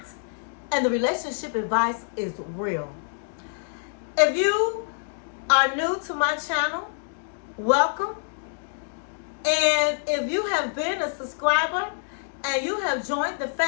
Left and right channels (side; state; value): right; silent; digital silence